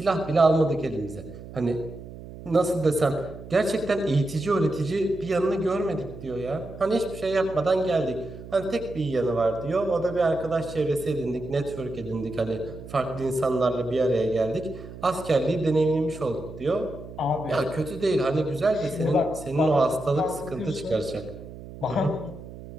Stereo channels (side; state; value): right; noise; hum, 14 dB below the sound